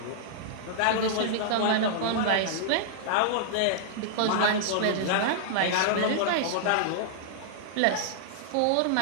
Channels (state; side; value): different; both; correlation -0.02